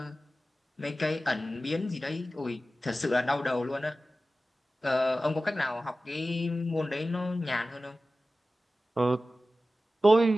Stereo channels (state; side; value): normal; both; correlation 0.95